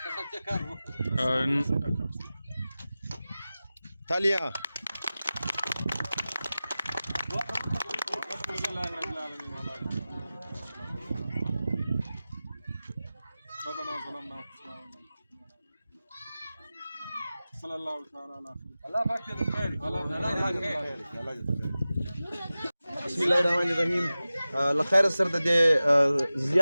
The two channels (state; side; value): inverted; both; correlation -0.96